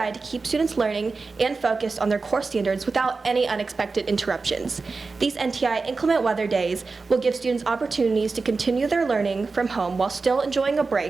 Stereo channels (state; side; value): quieter; left; 4.1 dB